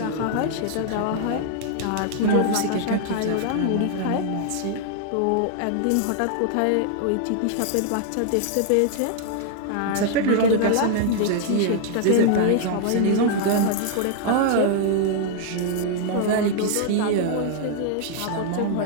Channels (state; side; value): different; both; correlation 0.00